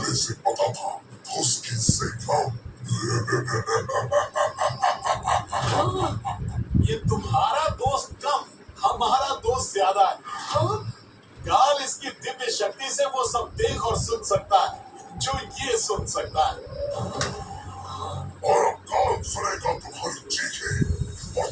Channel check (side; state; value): both; identical; correlation 1.00